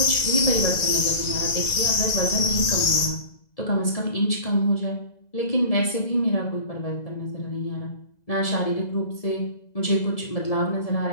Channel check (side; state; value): right; late; 2.0 ms